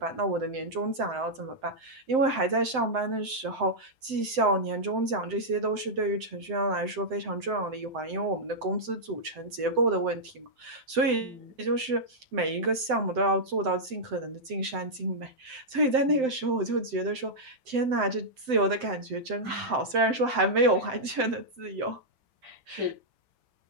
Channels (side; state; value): left; late; 7.7 ms